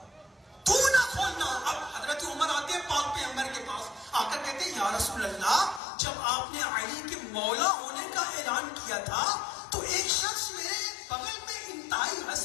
تو نہ کھولنا. اب حضرت عمر آتے ہیں پاک پیغمبر کے پاس، آ کر کہتے ہیں یا رسول اللہ، جب آپ نے علی کے مولا ہونے کا اعلان کیا تھا تو ایک شخص میرے بغل میں انتہائی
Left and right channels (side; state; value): right; drops out; at 5.8 s